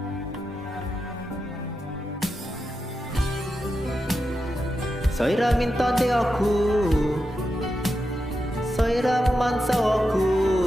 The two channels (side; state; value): both; normal; correlation 0.88